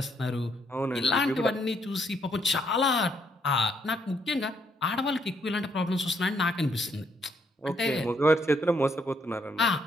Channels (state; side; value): normal; both; correlation 0.72